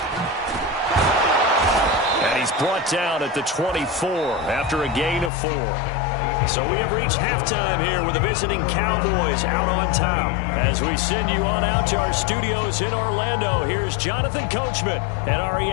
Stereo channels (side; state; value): right; drops out; at 5.3 s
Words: And he's brought down at the 24 after a gain of 4. So we have reached halftime here with the visiting Cowboys out on top. As we send you on out to our studios in Orlando, here's Jonathan Coachman at